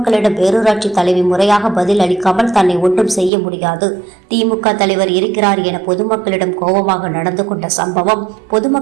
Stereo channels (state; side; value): drops out; left; at 3.3 s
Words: பேரூராட்சி தலைவி முறையாக பதில் அளிக்காமல் தன்னை ஒன்றும் செய்ய முடியாது, திமுக தலைவர் இருக்கிறார் என பொதுமக்களிடம் கோபமாக நடந்து கொண்ட சம்பவம்